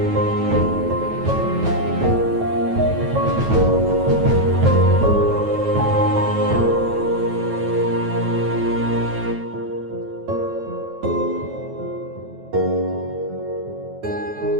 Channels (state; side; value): late; left; 9.2 ms